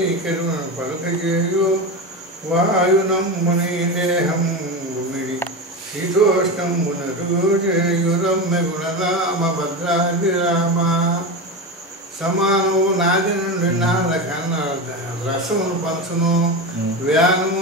కరుణ పలుక చేయు వాయునమ్ముని దేహం గుమిడి శీతోష్ణంబునరు చేయు రమ్య గుణరామ భద్రాది రామ సమానము నాది నుండి నాద కన్నా రసమును పంచును వ్యానము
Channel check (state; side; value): normal; both; correlation 0.20